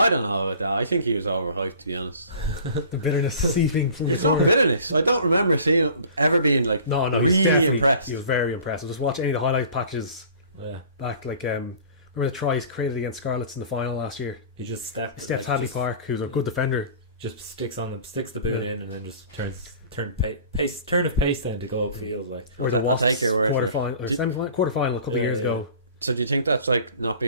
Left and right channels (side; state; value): both; inverted; correlation -0.44